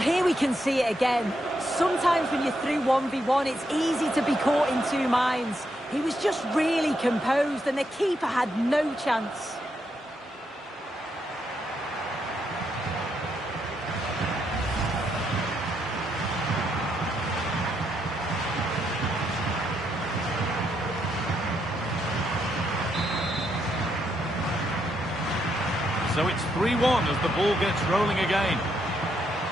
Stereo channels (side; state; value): both; normal; correlation 0.78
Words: here we can see it again. Sometimes when you're through 1v1, it's easy to be caught in two minds. He was just really composed and the keeper had no chance. So it's 3-1 as the ball gets rolling again.